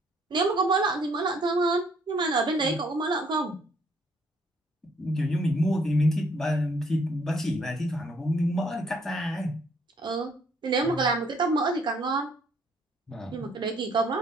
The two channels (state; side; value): normal; both; correlation 0.65